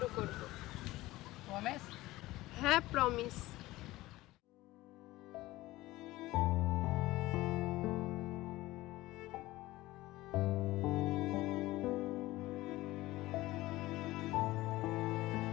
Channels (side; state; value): right; quieter; 18.1 dB